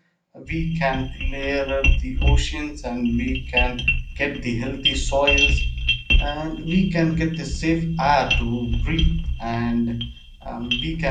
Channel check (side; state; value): both; identical; correlation 1.00